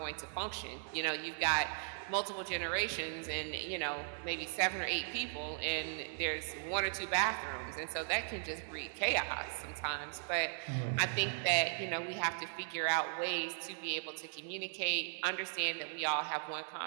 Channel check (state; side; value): silent; left; 53 dB below the other